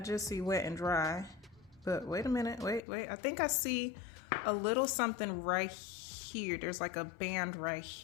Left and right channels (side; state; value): right; drops out; at 2.8 s